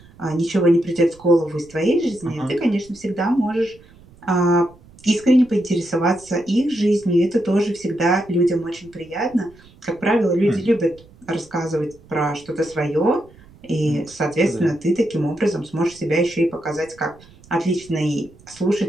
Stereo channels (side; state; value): right; noise; rumble, 25 dB below the sound